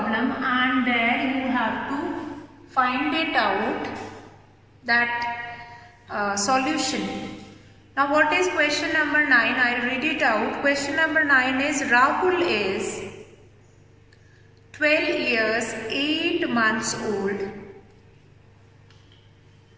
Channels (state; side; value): identical; both; correlation 1.00